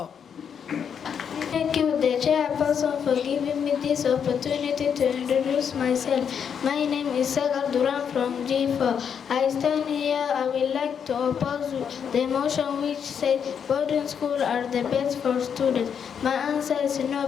Thank you, the Chairperson, for giving me this opportunity to introduce myself. My name is Sagal Duran from G4. I stand here. I would like to oppose the motion which says boarding schools are the best for students. My answer is no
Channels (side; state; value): right; quieter; 7.5 dB